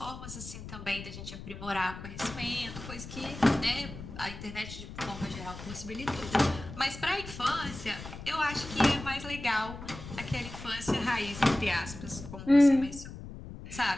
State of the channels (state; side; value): noise; left; rumble, 12 dB below the sound